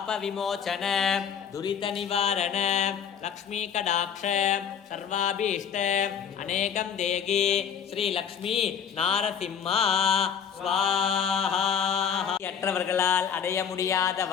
दुरितनिवारण लक्ष्मी कटाक्ष सर्वाभीष्ट अनेकं देहि श्रीलक्ष्मी नारसिंह स्वाहा। அற்றவர்களால் அடைய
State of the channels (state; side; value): quieter; right; 7.8 dB